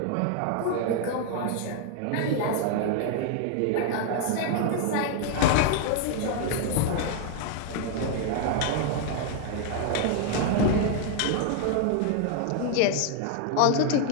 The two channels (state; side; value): different; both; correlation 0.00